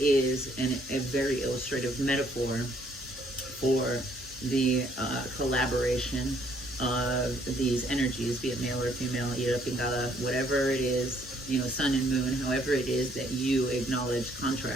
a very illustrative metaphor for the collaboration of these energies, be it male or female, Ꭶ <applause> whatever it is, sun and moon, however it is that you acknowledge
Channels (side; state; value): both; normal; correlation 0.65